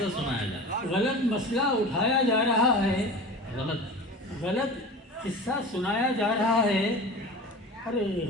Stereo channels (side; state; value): both; normal; correlation 0.34